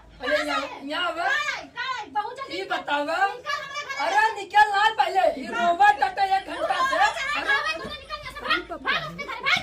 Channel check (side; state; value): both; identical; correlation 1.00